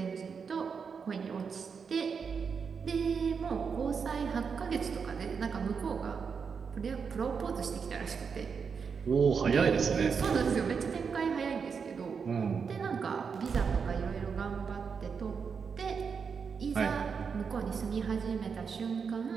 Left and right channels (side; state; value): left; quieter; 6.0 dB